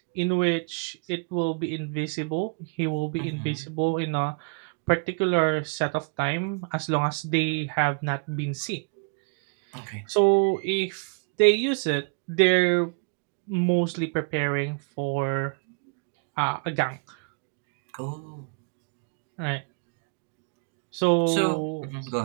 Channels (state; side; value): quieter; left; 34.3 dB